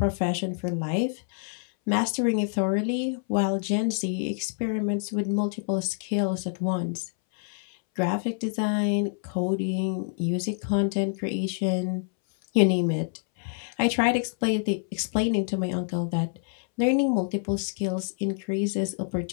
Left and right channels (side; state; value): right; silent; 60 dB below the other